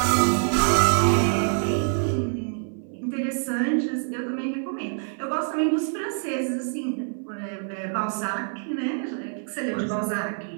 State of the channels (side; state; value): left; silent; 61 dB below the other